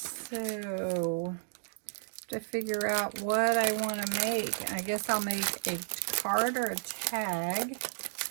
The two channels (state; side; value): silent; left; digital silence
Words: to figure out what I want to make, I guess I'll make a card or a tag.